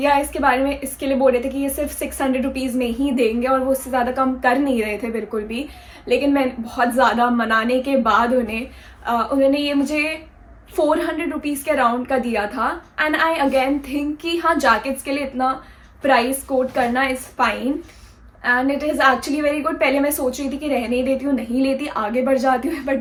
इसके बारे में इसके लिए बोल रहे थे कि ये सिर्फ 600 रुपीज़ में ही देंगे और वो उससे ज़्यादा कम कर नहीं रहे थे बिल्कुल भी, लेकिन मैं बहुत ज़्यादा मनाने के बाद उन्होंने ये मुझे 400 रुपीज़ के अराउंड का दिया था। एंड आई अगेन थिंक कि हाँ जैकेट्स के लिए इतना प्राइस कोट करना is fine and it is actually very good. पहले मैं सोच रही थी कि रहने ही देती हूँ, नहीं लेती, आगे बढ़ जाती हूँ,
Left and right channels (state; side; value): identical; both; correlation 1.00